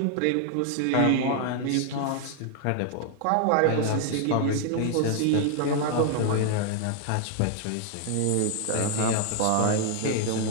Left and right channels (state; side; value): different; both; correlation 0.00